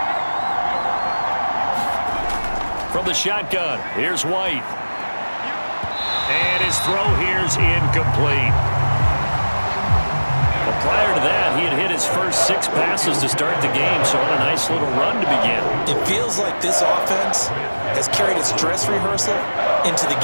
From the shotgun, here's White. And his throw here's incomplete. Well, prior to that, he had hit his first 6 passes to start the game, so on a nice little run to begin. It feels like this offense has carried its dress rehearsal into the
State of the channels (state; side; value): inverted; both; correlation -1.00